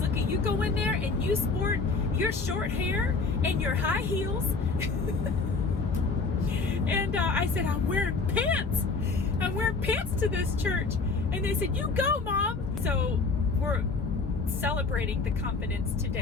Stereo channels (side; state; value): right; quieter; 4.3 dB